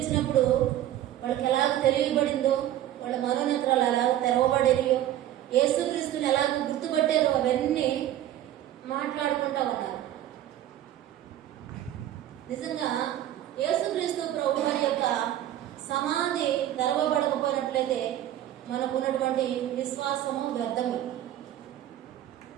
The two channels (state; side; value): quieter; left; 12.6 dB